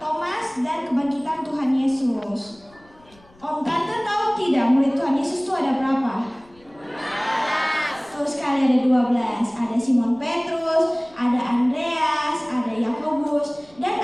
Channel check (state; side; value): noise; left; rumble, 29 dB below the sound